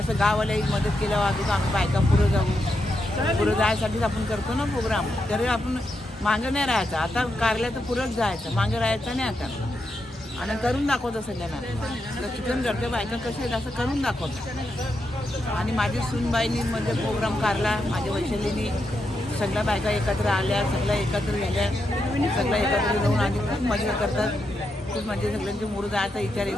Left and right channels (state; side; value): normal; both; correlation 0.84